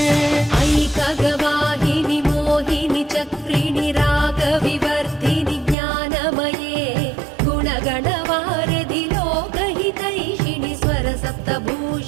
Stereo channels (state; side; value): drops out; left; at 5.8 s